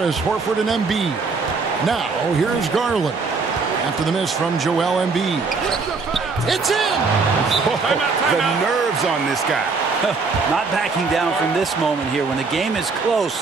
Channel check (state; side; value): quieter; left; 4.5 dB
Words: Horford, and Embiid. Now, here's Garland. After the miss from Joel Embiid. It's in! The nerves on this guy. Not backing down from this moment here. When the game is